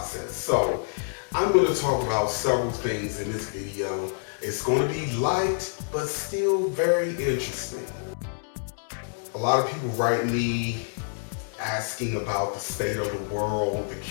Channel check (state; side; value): silent; right; digital silence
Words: So I'm going to talk about several things in this video. It's going to be light, but still very interesting. A lot of people write me asking about the state of the world, the